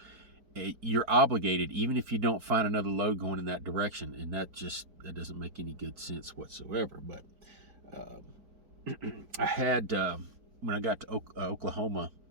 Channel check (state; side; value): late; left; 4.5 ms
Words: you're obligated, even if you don't find another load going in that direction. And that doesn't make any good sense whatsoever. But I had, when I got to Oklahoma